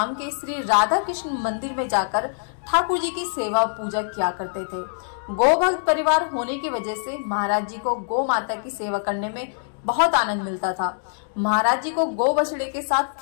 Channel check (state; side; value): silent; right; digital silence